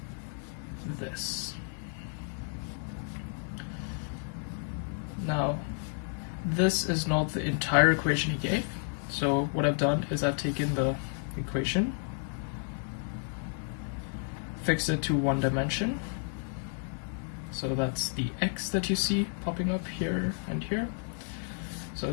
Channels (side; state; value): right; silent; 57 dB below the other